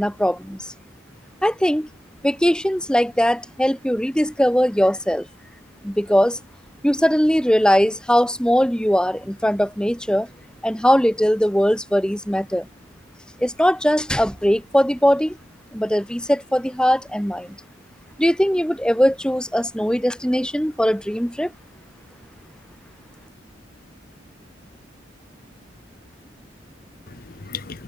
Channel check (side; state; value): both; normal; correlation 0.96